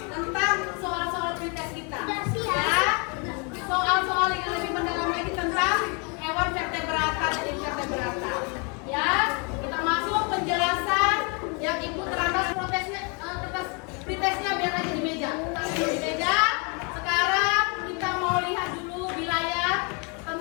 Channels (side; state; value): right; quieter; 34.0 dB